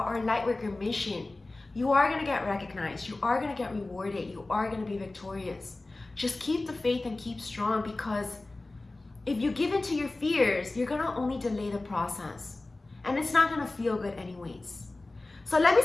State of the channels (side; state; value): right; quieter; 3.0 dB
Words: our lightworker mission. You are going to get recognized. You are going to get rewarded. You are going to be victorious. Just keep the faith and keep strong, because if you give in to your fears, you're going to only delay the process. And it's not going to feel good anyways. So let me